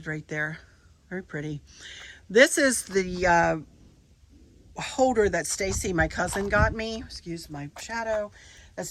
right there. Very pretty. This is the holder that Stacy, my cousin, got me. Excuse my shadow. That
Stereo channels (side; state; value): both; identical; correlation 1.00